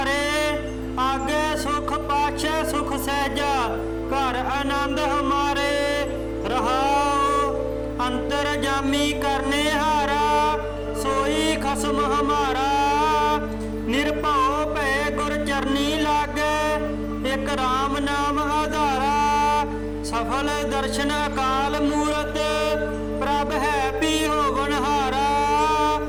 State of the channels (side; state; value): both; identical; correlation 1.00